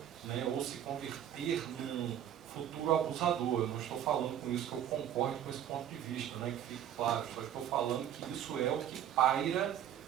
né, ou se converter num futuro abusador. Eu não estou falando com isso que eu concordo com esse ponto de vista, né, que fique claro, só estou falando que isso é o que paira,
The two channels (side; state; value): left; quieter; 10.4 dB